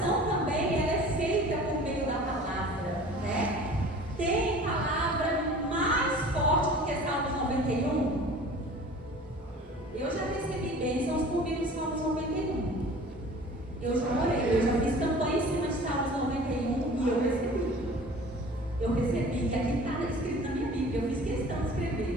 também ela é feita por meio da palavra, Tem palavra mais forte do que Salmos 91? Eu já recebi bênçãos por meio de Salmos 91. Eu já orei, eu já fiz campanha em cima de Salmos 91 e eu recebi. E aqui está escrito na minha Bíblia, eu fiz questão de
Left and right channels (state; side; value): normal; both; correlation 0.44